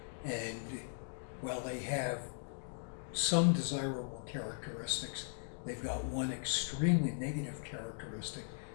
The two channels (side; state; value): right; silent; digital silence